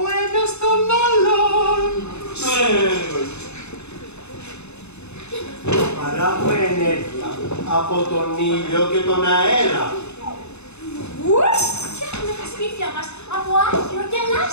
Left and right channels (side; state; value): right; late; 0.81 ms